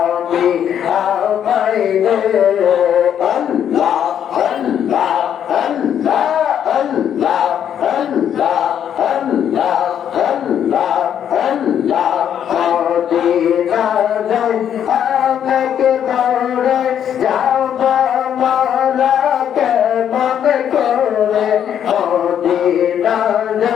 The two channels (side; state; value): right; quieter; 9.3 dB